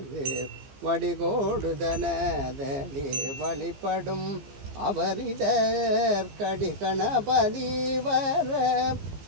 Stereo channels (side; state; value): left; late; 15 ms